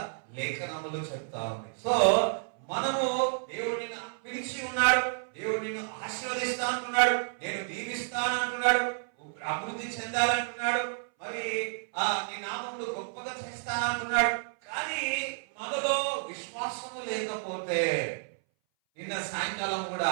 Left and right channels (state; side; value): silent; left; 58 dB below the other